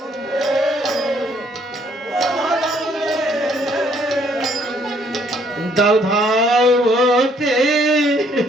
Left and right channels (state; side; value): normal; both; correlation 0.66